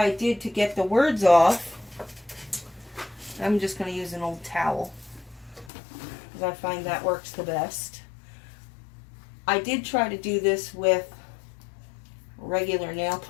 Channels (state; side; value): drops out; right; at 5.7 s